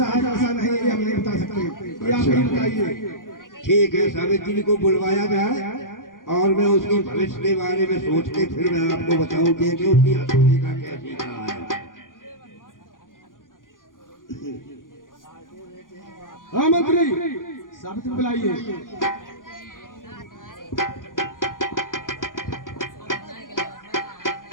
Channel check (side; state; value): right; late; 0.89 ms